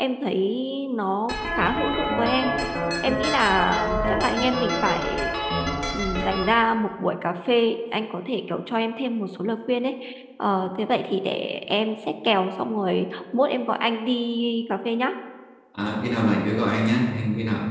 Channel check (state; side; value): identical; both; correlation 1.00